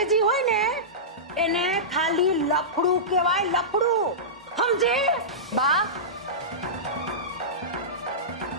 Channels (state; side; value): normal; both; correlation -0.17